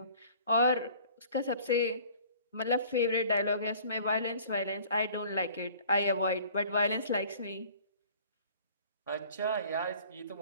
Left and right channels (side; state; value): both; inverted; correlation -0.50